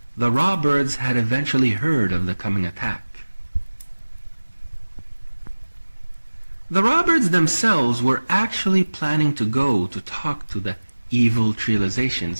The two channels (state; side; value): inverted; both; correlation -1.00